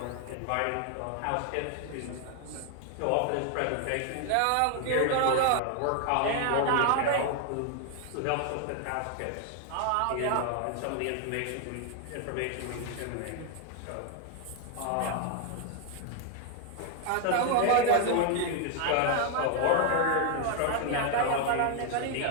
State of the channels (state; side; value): different; both; correlation 0.00